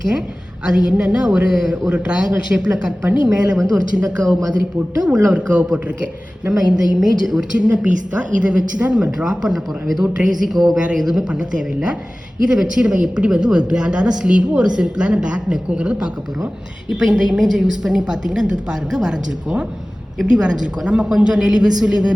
அது என்னென்னா ஒரு ட்ரையாங்கிள் ஷேப்பில் கட் பண்ணி மேலே வந்து ஒரு சின்ன கர்வ் மாதிரி போட்டு உள்ளே ஒரு கர்வ் போட்டிருக்கேன். நம்ம இந்த இமேஜ் ஒரு சின்ன பீஸ் தான், இதை வச்சு தான் நம்ம ட்ரா பண்ண போகிறோம். ஏதோ ட்ரேசிங்கோ வேறு எதுவுமே பண்ண தேவையில்லை. இதை வச்சு நம்ம எப்படி வந்து ஒரு கிராண்டான ஸ்லீவும் ஒரு சிம்பிளான பேக் நெக்குங்கிறத பார்க்க போகிறோம். இப்போ இந்த இமேஜை யூஸ் பண்ணி பார்த்தீங்கன்னா, இந்த பாருங்கள் வரைஞ்சிருக்கோம். எப்படி வரைஞ்சிருக்கோம், நம்ம கொஞ்சம் நெளிவு சுழிவு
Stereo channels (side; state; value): both; normal; correlation 0.97